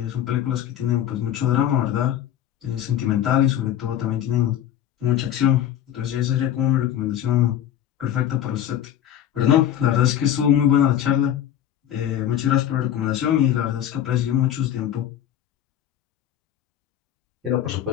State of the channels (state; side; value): quieter; right; 10.7 dB